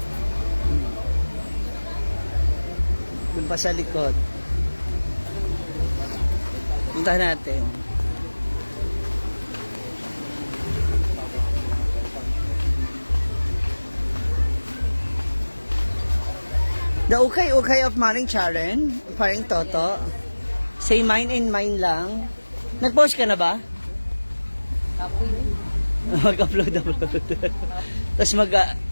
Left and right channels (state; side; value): inverted; both; correlation -1.00